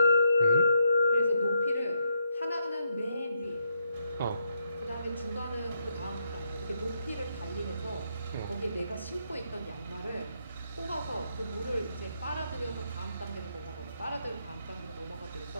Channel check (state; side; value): inverted; both; correlation -0.78